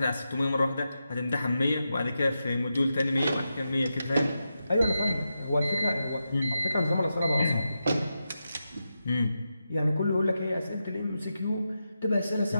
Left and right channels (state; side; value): inverted; both; correlation -0.88